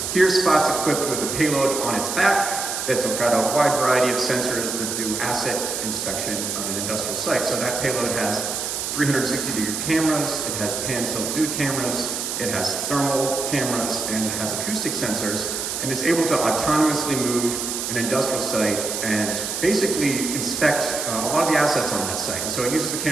Here, Spot's equipped with a payload on its back that's got a wide variety of sensors that do asset inspection on an industrial site. So that payload has 360-degree cameras, it has pan-tilt zoom cameras, it has thermal cameras, and it has acoustic sensors, and it's able to autonomously move an industrial site and basically inspect a lot of the assets on that site. And so it uses the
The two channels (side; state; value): right; noise; hiss, 3 dB below the sound